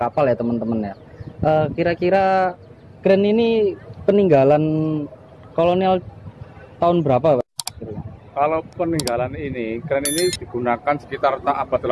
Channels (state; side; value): identical; both; correlation 1.00